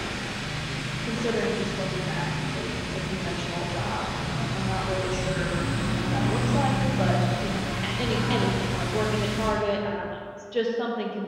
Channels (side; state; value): both; identical; correlation 1.00